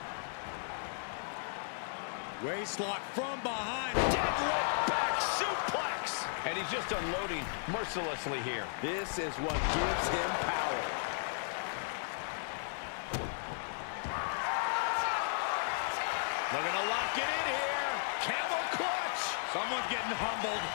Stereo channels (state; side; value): silent; right; digital silence